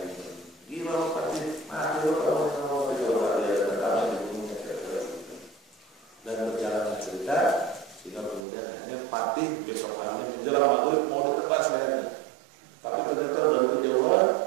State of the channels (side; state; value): left; drops out; at 8.5 s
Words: gila Fatih, mati lo kamu coba dia datang dibunuhnya dan berjalan cerita. Sehingga kemudian akhirnya Fatih besok harinya menjelang maghrib mau ditebas lehernya. Tapi ternyata dari kejauhan